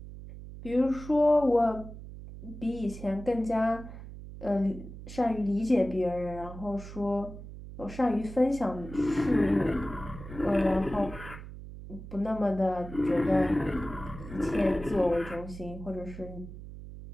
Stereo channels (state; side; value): noise; right; hum, 13 dB below the sound